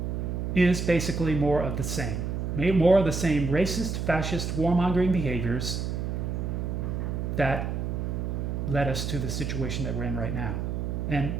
is basically more of the same. More of the same racist, fascist, warmongering behaviors that led us to the situation that we're in right now. And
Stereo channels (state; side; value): noise; right; hum, 2 dB below the sound